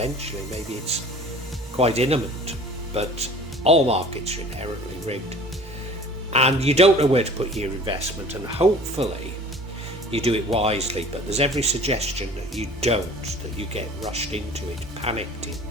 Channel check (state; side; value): normal; both; correlation 0.46